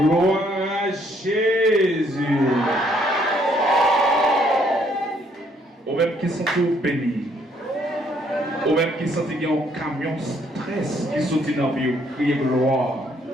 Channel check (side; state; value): both; normal; correlation 0.67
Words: à Jésus. Au même qui sont tous bénis. Au même qui sont qu'il y a un camion stress qui sont dans la vie. Criez gloire.